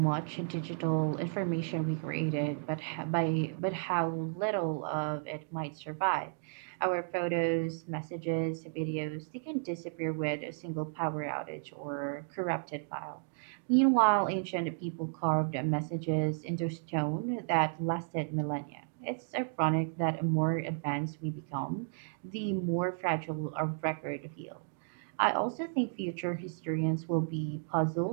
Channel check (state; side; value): silent; left; digital silence